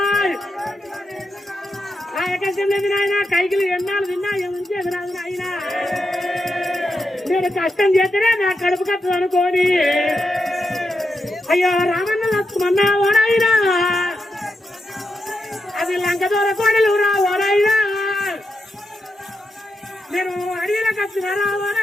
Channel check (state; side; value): normal; both; correlation 0.86